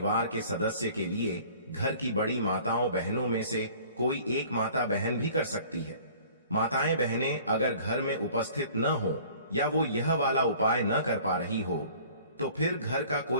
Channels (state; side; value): inverted; both; correlation -0.50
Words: के सदस्य के लिए घर की बड़ी माताओं बहनों में से कोई एक माता बहन भी कर सकती है। माताएं बहनें अगर घर में उपस्थित न हो या वो यह वाला उपाय न कर पा रही हो तो फिर घर का